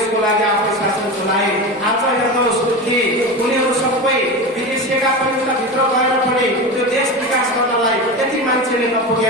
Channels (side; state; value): both; normal; correlation 0.24